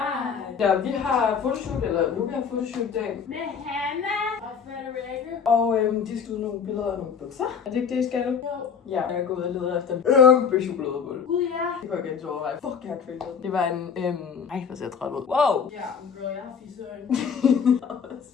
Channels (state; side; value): quieter; right; 6.6 dB